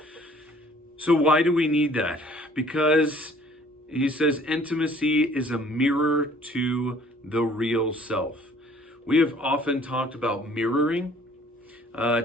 So why do we need that? Because he says intimacy is a mirror to the real self. We have often talked about mirroring.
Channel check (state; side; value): normal; both; correlation 0.55